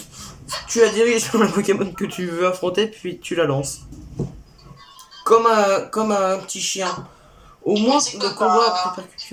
Tu la diriges sur le Pokémon que tu veux affronter, puis tu la lances. Comme un petit chien. Au moins, le combat a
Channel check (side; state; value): both; identical; correlation 1.00